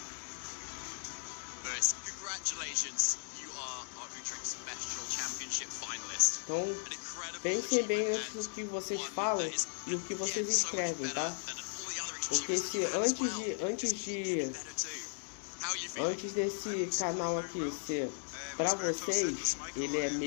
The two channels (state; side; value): silent; right; digital silence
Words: Lewis, congratulations. You are our Utrecht Special Championship finalist. Então, an incredible pensem bem achievement antes do que vocês one falam that is, e o que vocês again, so much escrevem, tá? better than all the other Porque achievements that se you've had as well. antes desse canal aqui ser pra vocês, ele é